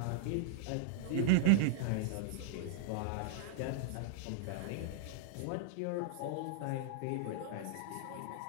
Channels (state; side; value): different; both; correlation -0.01